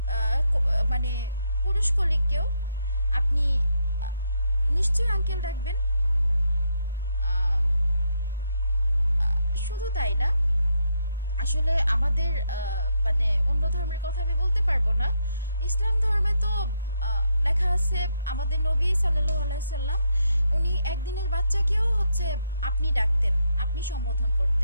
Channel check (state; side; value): inverted; both; correlation -0.77